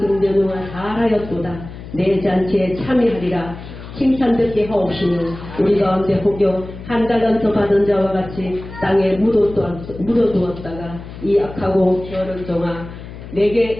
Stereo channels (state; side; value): noise; left; hum, 13 dB below the sound